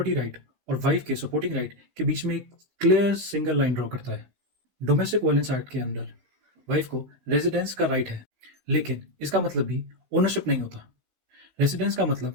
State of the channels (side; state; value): left; late; 16 ms